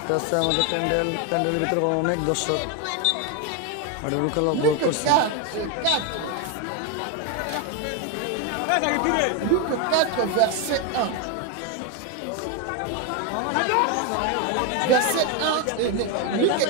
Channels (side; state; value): both; different; correlation 0.02